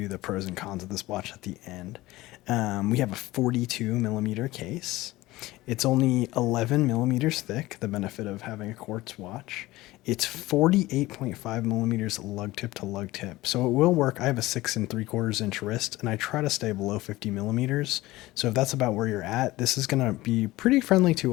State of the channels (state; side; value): quieter; right; 18.5 dB